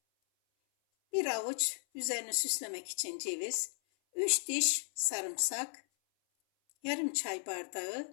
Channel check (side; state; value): right; silent; 54 dB below the other